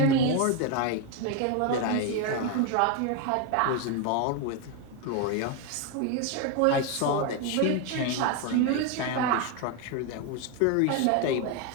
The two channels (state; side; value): different; both; correlation 0.01